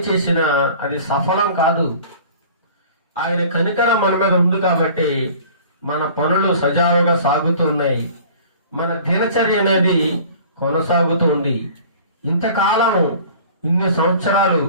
చేసినా అది సఫలం కాదు. ఆయన కనికరం మన మీద ఉంది కాబట్టి మన పనులు సజావుగా సాగుతూ ఉన్నాయి. మన దినచర్య అనేది కొనసాగుతూ ఉంది. ఇంతకాలం ఇన్ని సంవత్సరాలు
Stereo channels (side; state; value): both; inverted; correlation -0.46